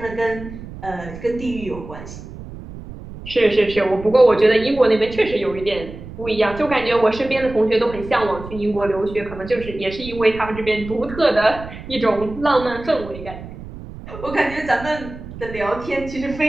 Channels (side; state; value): right; noise; rumble, 13 dB below the sound